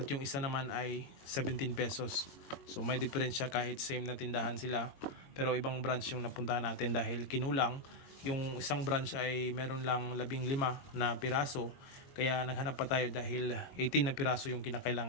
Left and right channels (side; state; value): right; late; 22 ms